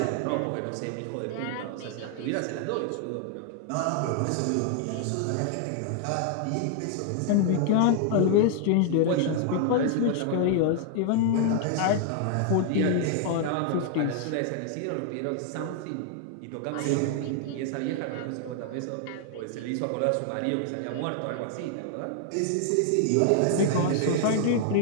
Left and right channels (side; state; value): both; different; correlation 0.00